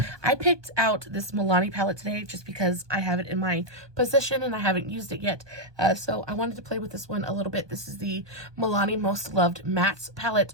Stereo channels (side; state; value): left; late; 1.2 ms